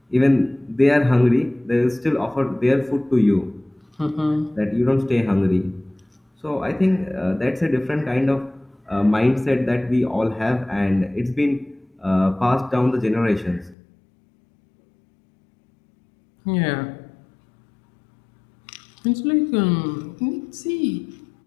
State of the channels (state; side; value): drops out; right; at 13.8 s